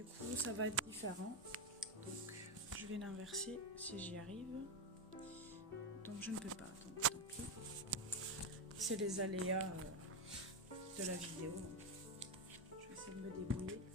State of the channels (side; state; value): both; normal; correlation 0.09